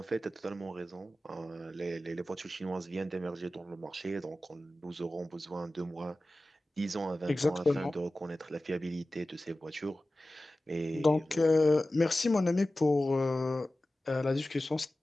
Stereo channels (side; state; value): both; normal; correlation 0.96